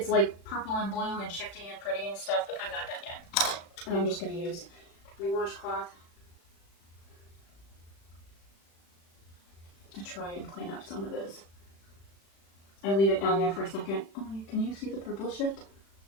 like purple and blue and shifty and pretty and stuff, but I'm not done yet. And I'm just going to use my washcloth to try and clean up some of this. I leave it down there for a second. Oh, can you see the purple shift?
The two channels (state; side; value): late; right; 36 ms